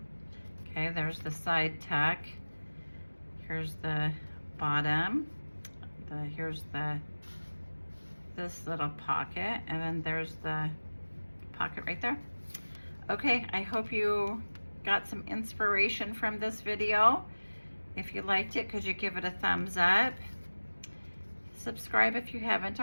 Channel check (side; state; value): both; inverted; correlation -1.00